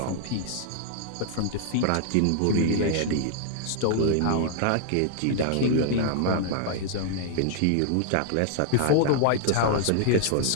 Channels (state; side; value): different; both; correlation -0.01